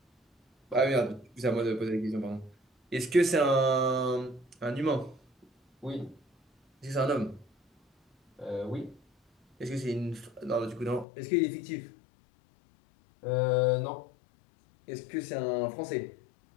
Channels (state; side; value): drops out; right; at 11.1 s